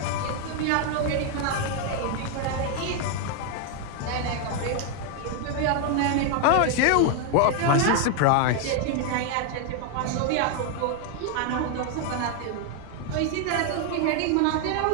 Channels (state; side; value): different; both; correlation 0.01